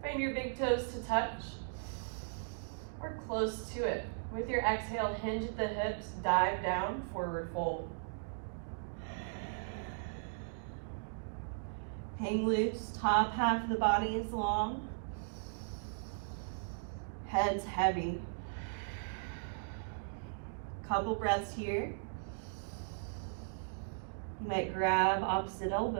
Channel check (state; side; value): silent; left; digital silence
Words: Find your big toes to touch or close to it. With your exhale, hinge at the hips, dive down, forward fold. Hang loose, top half of the body is long. Head's heavy. Couple breaths here. You might grab opposite